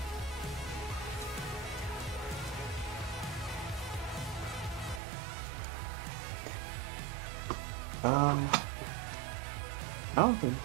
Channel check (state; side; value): drops out; left; at 5.0 s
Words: I don't think.